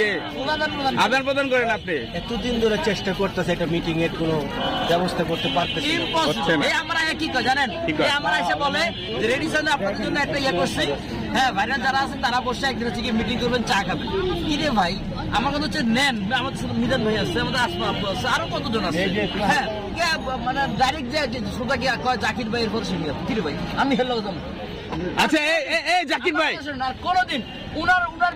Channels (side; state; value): both; identical; correlation 1.00